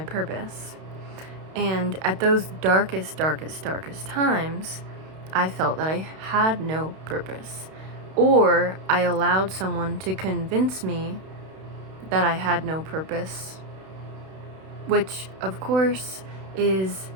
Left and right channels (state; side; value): late; left; 32 ms